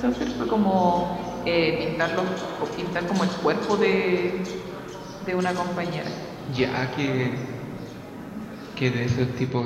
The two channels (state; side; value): identical; both; correlation 1.00